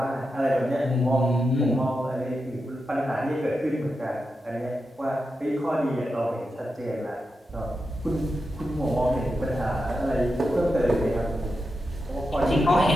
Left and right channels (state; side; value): normal; both; correlation 0.88